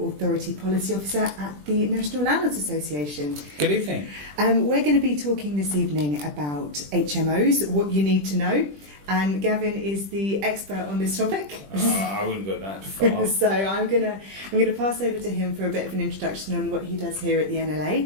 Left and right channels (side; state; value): left; late; 20 ms